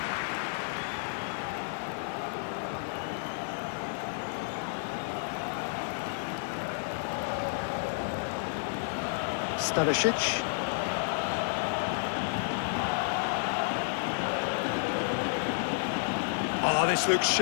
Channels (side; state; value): right; silent; digital silence